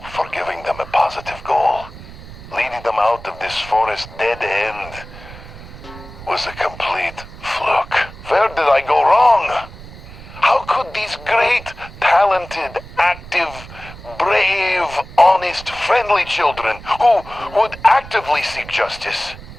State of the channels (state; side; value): noise; right; rumble, 16 dB below the sound